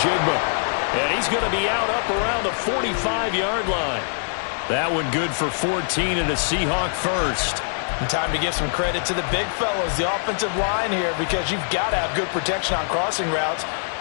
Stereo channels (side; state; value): right; silent; 63 dB below the other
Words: And he's going to be out up around the 45-yard line. That one good for 14 and a Seahawk first. And time to give some credit to the big fellows, the offensive line here, because you've got to have good protection on crossing routes